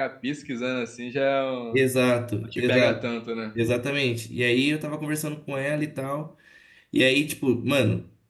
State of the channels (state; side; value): identical; both; correlation 1.00